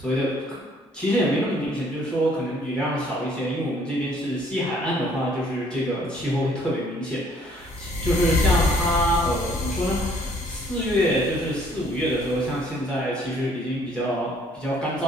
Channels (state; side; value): normal; both; correlation 0.61